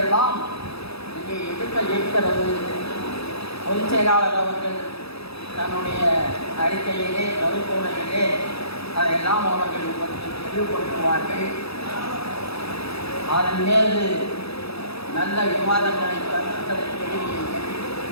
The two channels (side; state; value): right; late; 0.78 ms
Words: எல்லாம் இங்கே எடுக்க இருக்கிறது. பொதுச் செயலாளர் அவர்கள் தன்னுடைய அறிக்கையிலே, கருத்துரையிலே அதையெல்லாம் அவர்கள் தெளிவுபடுத்துவார்கள். அதன் மீது நல்ல விவாதங்களை, கருத்துக்களை தெரிவிங்கள்.